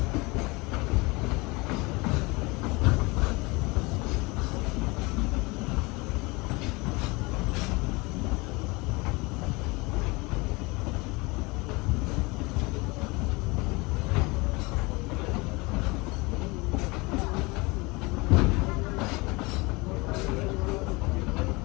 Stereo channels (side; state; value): right; quieter; 25.1 dB